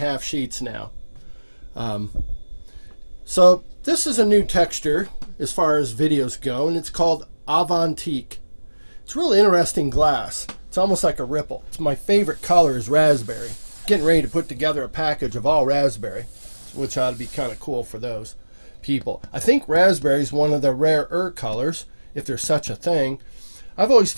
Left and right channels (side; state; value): both; inverted; correlation -1.00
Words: sheets now. So this is a new texture as far as videos go, and it's called Avantique. It's really interesting glass. It's almost like a ripple. It's my favorite color is raspberry. Getting ready to put together a package of all raspberry, which ought to be kind of cool for those people. I think raspberry is one of the rarer colors, if there's such a thing. I've always